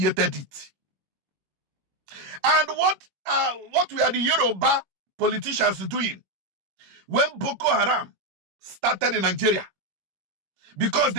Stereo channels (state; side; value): late; left; 21 ms